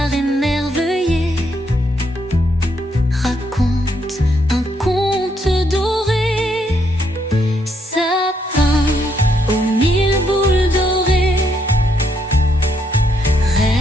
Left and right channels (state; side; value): normal; both; correlation 0.75